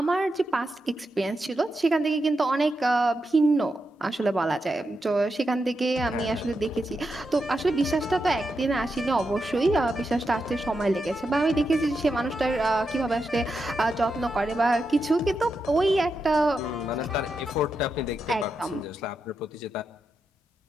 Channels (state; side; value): normal; both; correlation 0.86